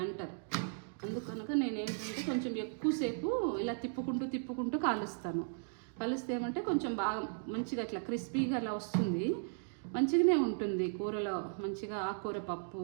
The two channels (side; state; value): left; silent; digital silence